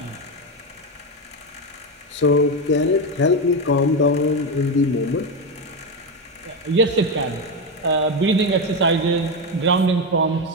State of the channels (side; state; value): both; normal; correlation 0.12